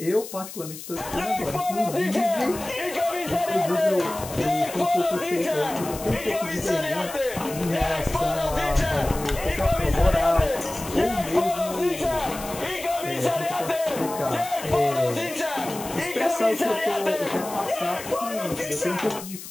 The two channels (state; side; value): noise; left; hiss, 12 dB below the sound